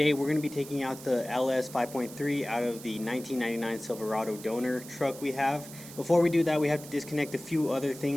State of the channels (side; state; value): right; noise; hiss, 15 dB below the sound